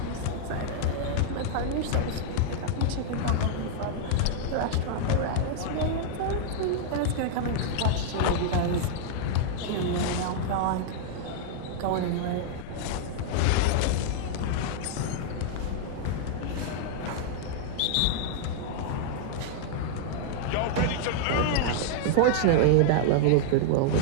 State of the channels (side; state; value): both; different; correlation -0.01